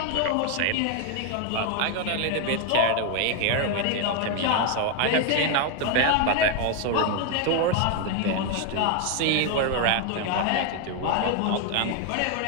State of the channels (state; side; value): different; both; correlation 0.01